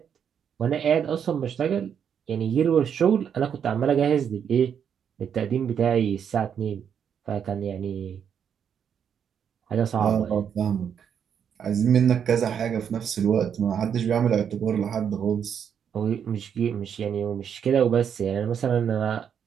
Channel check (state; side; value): quieter; left; 8.0 dB